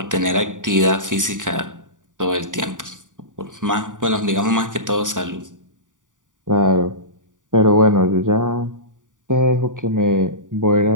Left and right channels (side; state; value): left; late; 0.88 ms